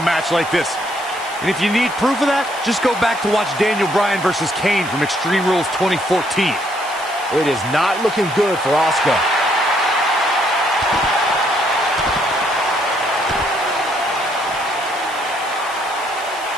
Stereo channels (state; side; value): noise; left; hiss, 17 dB below the sound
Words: match like this. And if you need proof of that, just go back to watch Daniel Bryan versus Kane from Extreme Rules 2014. It is not looking good for Asuka.